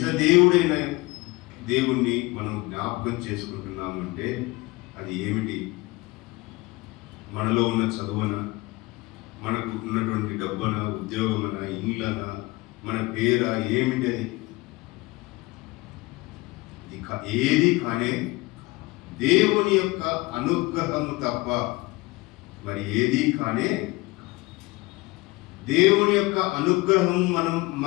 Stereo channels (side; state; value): right; quieter; 22.5 dB